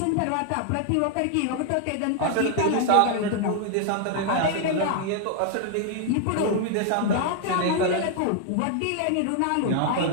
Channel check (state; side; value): different; both; correlation 0.00